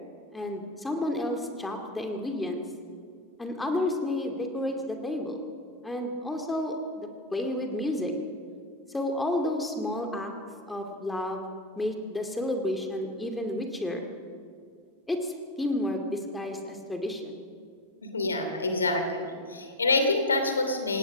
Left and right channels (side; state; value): both; normal; correlation 0.12